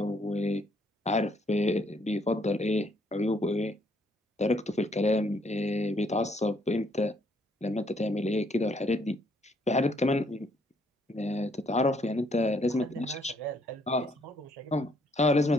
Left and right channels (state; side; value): normal; both; correlation 0.69